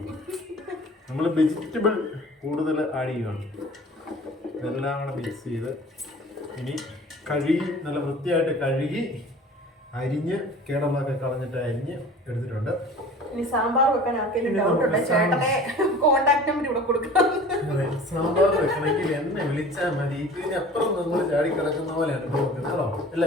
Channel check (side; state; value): both; normal; correlation 0.43